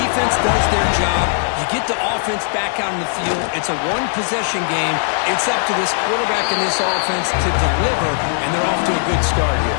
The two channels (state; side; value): silent; right; 56 dB below the other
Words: does their job. You get the offense back out in the field. It's a one-possession game. It's up to this quarterback and this offense to deliver, and they're off to a good start here.